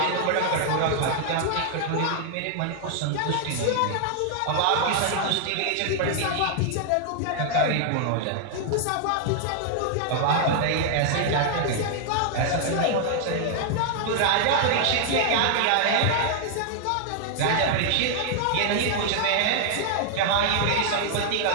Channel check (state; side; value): different; both; correlation 0.00